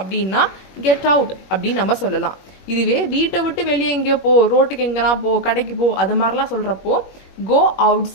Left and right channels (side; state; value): right; late; 21 ms